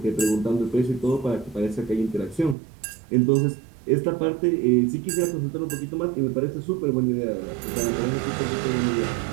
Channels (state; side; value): drops out; left; at 2.6 s